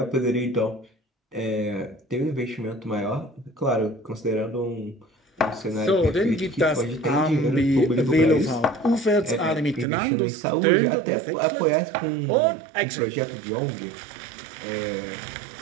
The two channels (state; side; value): drops out; left; at 9.9 s